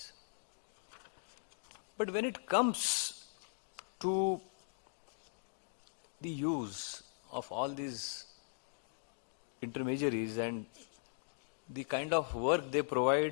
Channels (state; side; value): silent; right; digital silence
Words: But when it comes to the use of all these intermediaries and the kind of work they